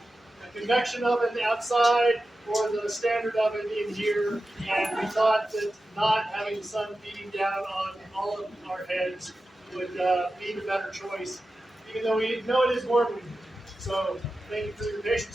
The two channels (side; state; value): both; normal; correlation 0.93